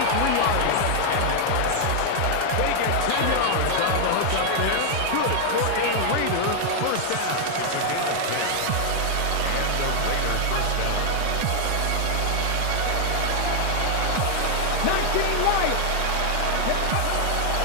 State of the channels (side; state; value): both; different; correlation 0.00